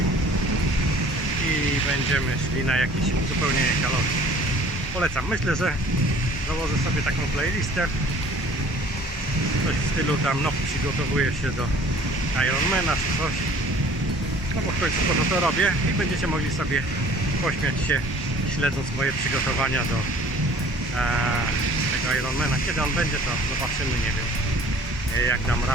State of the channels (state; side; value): normal; both; correlation 0.51